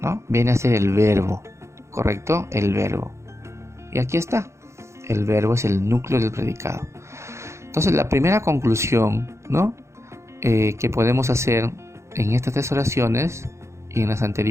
¿no? Viene a ser el verbo, ¿correcto? El verbo. Y aquí está. El verbo es el núcleo del predicado. Entonces, la primera conclusión, ¿no? Que podemos hacer en estas tres oraciones y en las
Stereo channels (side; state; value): left; late; 0.14 ms